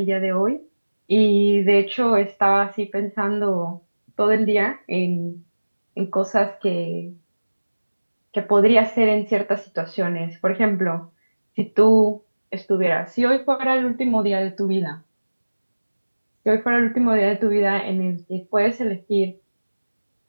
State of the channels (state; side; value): inverted; both; correlation -1.00